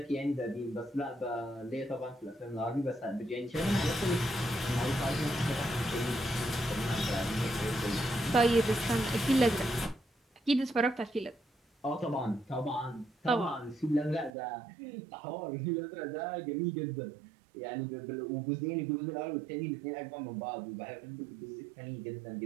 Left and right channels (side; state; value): left; drops out; at 14.3 s